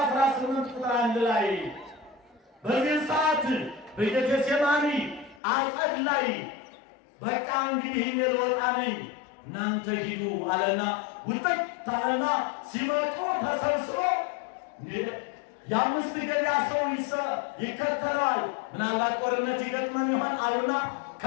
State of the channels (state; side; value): drops out; right; at 5.4 s